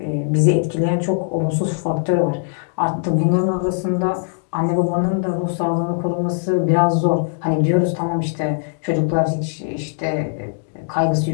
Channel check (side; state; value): right; silent; digital silence